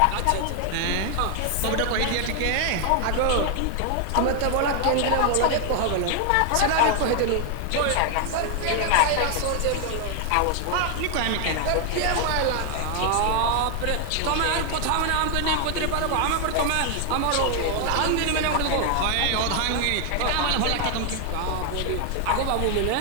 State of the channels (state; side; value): different; both; correlation 0.00